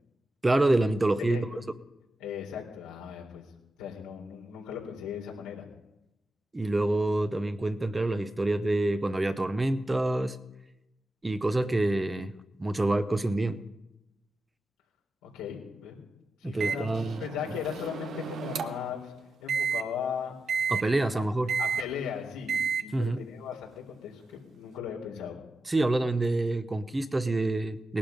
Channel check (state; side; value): normal; both; correlation 0.90